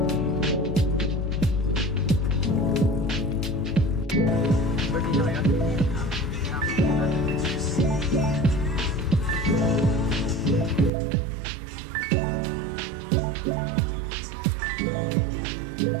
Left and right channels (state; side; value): drops out; left; at 10.9 s